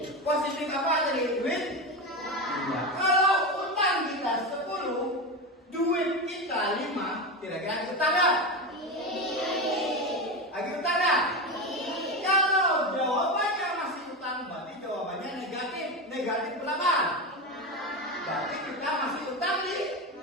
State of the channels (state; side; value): normal; both; correlation 0.18